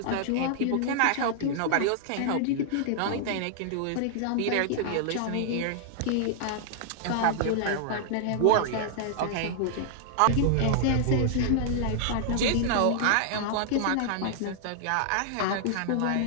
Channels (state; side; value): different; both; correlation -0.01